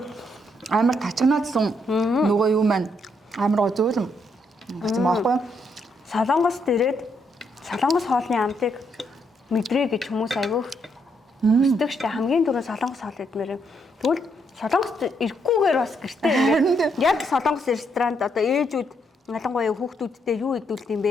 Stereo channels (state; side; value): normal; both; correlation 0.75